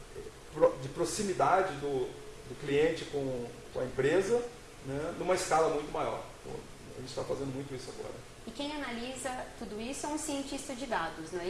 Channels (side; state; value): both; identical; correlation 1.00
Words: de proximidade do cliente com a empresa, né, numa escala muito maior. Então, a gente está fazendo muito isso agora. E quem analisa tudo isso é um cientista de dados, não é